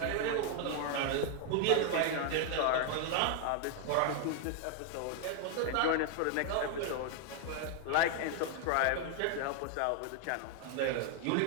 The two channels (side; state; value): both; different; correlation 0.00